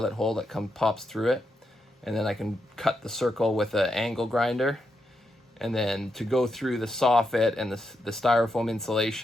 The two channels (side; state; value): both; normal; correlation 0.83